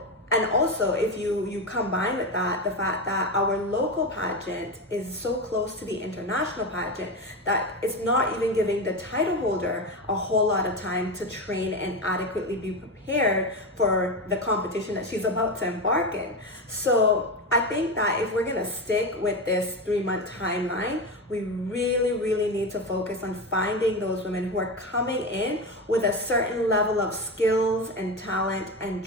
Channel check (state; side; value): normal; both; correlation 0.17